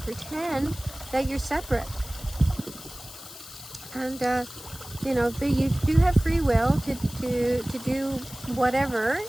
that you're separate? And you do have free will to do whatever,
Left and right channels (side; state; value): left; noise; hiss, 15 dB below the sound